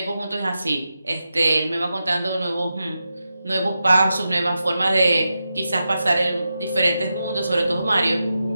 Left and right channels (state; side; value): inverted; both; correlation -0.89